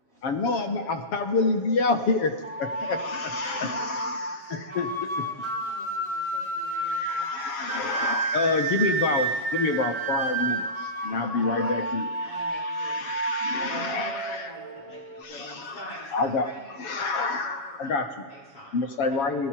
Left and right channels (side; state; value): right; late; 7.3 ms